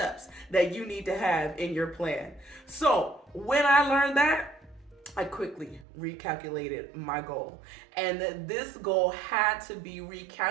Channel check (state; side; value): drops out; left; at 5.9 s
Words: that you need to have in your plan." So when I learned that, I quickly recalculated my goal. And this goal had to be